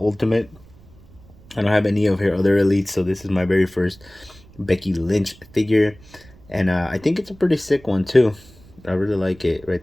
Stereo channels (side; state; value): right; noise; rumble, 24 dB below the sound